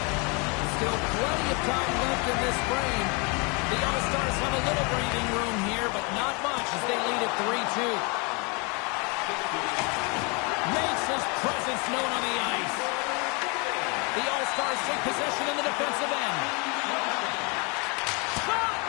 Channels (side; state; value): right; quieter; 31.5 dB